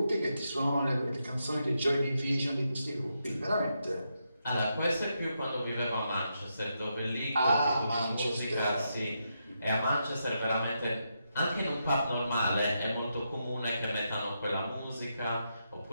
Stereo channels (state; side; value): inverted; both; correlation -0.83